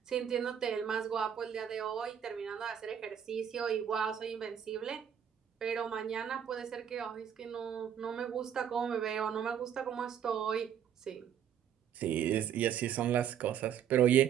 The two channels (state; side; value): quieter; left; 8.9 dB